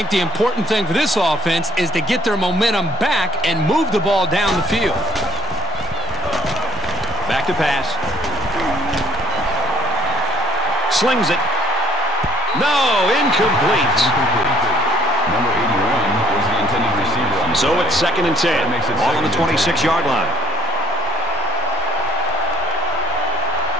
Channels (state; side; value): normal; both; correlation 0.54